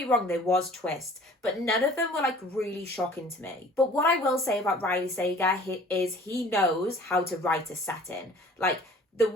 wrong, there was twists, but none of them were like really shocking to me. But what I will say about Riley Sager is he knows how to write a setting. Like, the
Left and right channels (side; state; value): both; normal; correlation 0.49